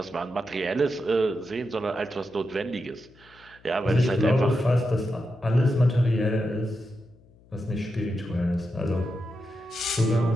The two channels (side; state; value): left; noise; hum, 27 dB below the sound